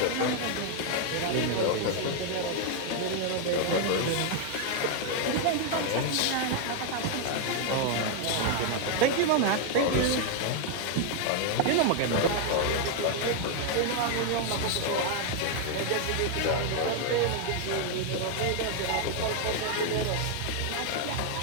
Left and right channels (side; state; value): both; different; correlation 0.00